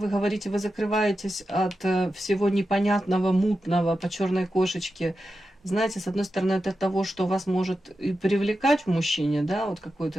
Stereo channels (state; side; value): normal; both; correlation 0.90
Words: говорите, вы закрываетесь от всего непонятного, мутного по черной кошечке. Знаете, с одной стороны, это того, что вас может и привлекать в мужчине, да, вот